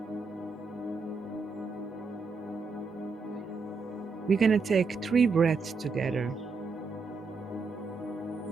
We're going to take 3 breaths together.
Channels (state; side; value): quieter; left; 4.4 dB